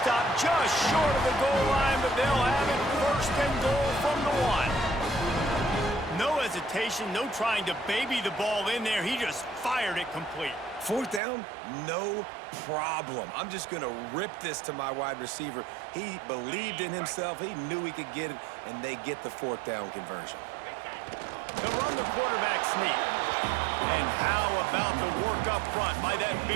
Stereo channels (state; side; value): drops out; left; at 11.2 s